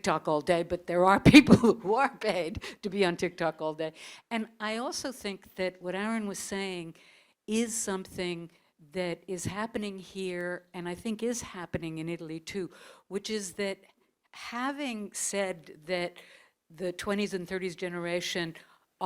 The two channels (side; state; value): both; identical; correlation 1.00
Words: all day, but there are people who are paid to be on TikTok all day. And I also think that what Aaron was saying is something that is happening here, and I think is happening in Italy too, which is that having said that the 20s and 30s generation